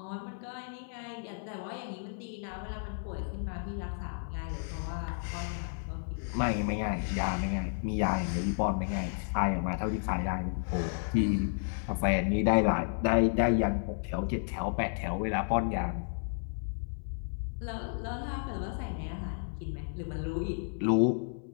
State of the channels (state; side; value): silent; right; 56 dB below the other